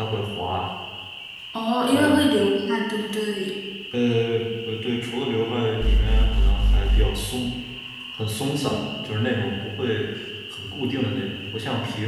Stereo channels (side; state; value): both; identical; correlation 1.00